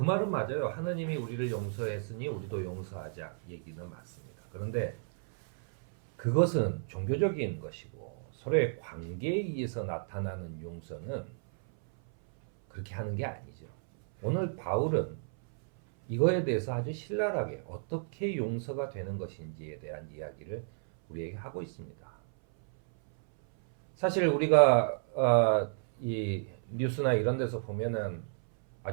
말은 맞아요. 하느님이 우리를 용서했으니 우리도 용서하자 얘기는 맞습니다. 그런데 그것은 종교적인 것이고 서로의 관계에 의해서 나타나는 용서는 그렇게 하는 게 아니죠. 오늘 바울은 이거에 대해서 아주 신랄하게 어떻게 용서가 되는 것인지에 대한 이야기를 우리에게 하고 있습니다. 사실 우리가 이 뉴스나 이런 데서 보면은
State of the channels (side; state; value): left; silent; 56 dB below the other